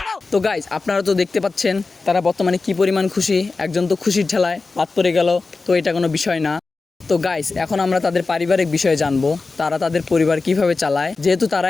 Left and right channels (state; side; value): quieter; right; 3.9 dB